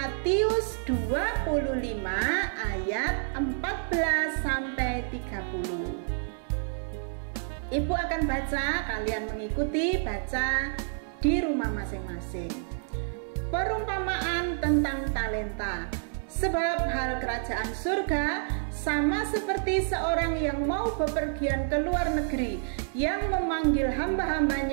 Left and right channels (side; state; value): left; silent; 59 dB below the other